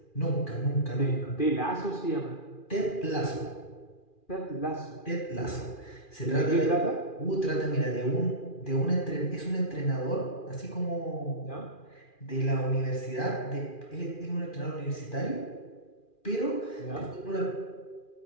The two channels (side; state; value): right; late; 2.4 ms